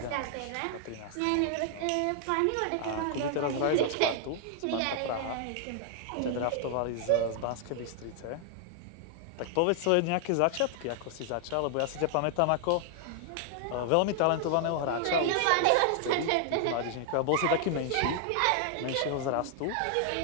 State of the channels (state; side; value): different; both; correlation 0.00